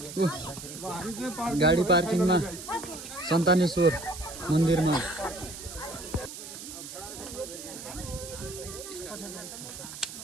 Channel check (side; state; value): right; noise; hiss, 11 dB below the sound